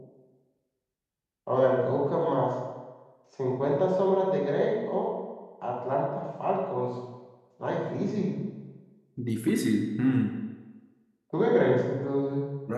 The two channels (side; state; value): both; identical; correlation 1.00